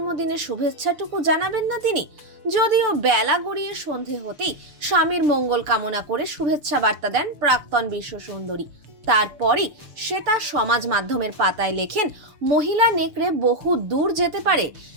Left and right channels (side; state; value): left; late; 6.7 ms